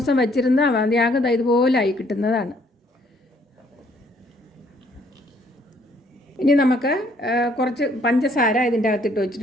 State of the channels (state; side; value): normal; both; correlation 0.65